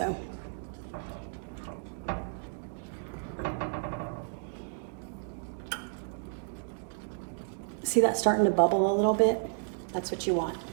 See that starting to bubble a little bit? That's what you want.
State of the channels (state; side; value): silent; left; digital silence